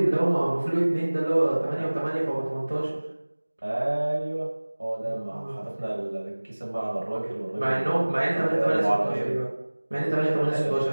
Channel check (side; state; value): both; inverted; correlation -1.00